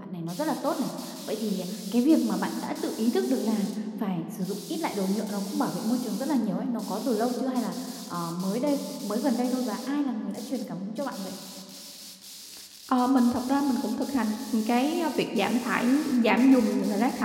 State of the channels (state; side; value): identical; both; correlation 1.00